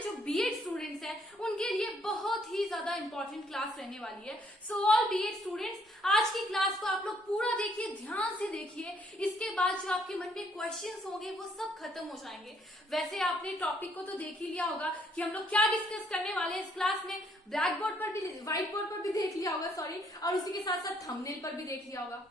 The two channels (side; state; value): both; normal; correlation 0.67